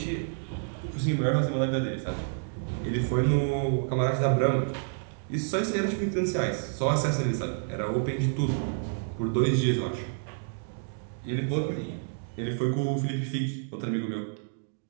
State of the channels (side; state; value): left; silent; digital silence